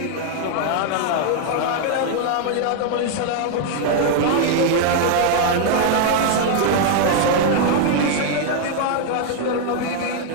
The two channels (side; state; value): both; different; correlation 0.00